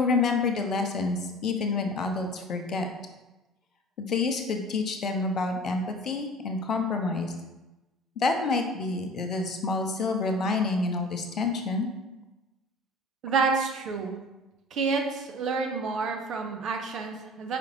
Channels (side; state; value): both; normal; correlation 0.42